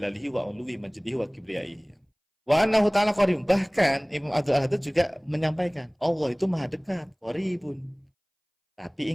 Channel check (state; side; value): identical; both; correlation 1.00